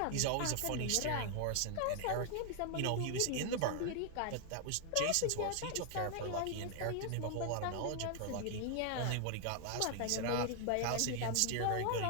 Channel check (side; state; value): both; different; correlation 0.00